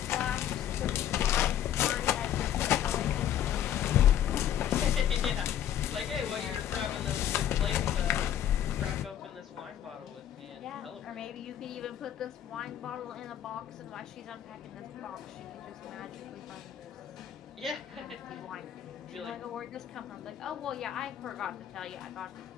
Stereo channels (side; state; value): right; quieter; 10.5 dB